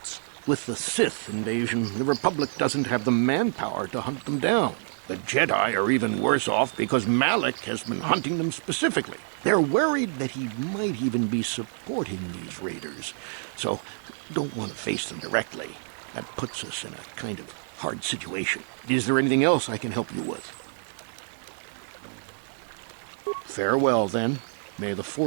With the Sith invasion, the Republic doesn't have the manpower to hunt them down. The Jedi are even worse off because Malak has been hunting them specifically. They're worried that he might even be supporting these raiders, so don't want to face them directly. That puts us in a kind of hard situation. Is there anything else I can help you with? Farewell, then. May the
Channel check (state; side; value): silent; left; 60 dB below the other